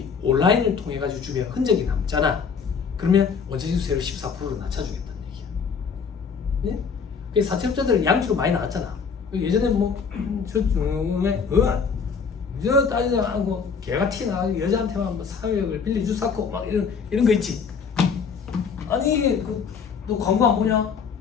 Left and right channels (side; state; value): right; quieter; 6.0 dB